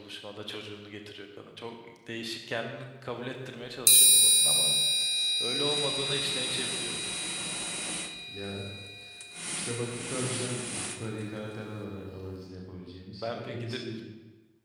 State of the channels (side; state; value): both; identical; correlation 1.00